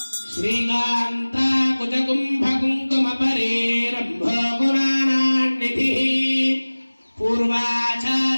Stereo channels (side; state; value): both; inverted; correlation -1.00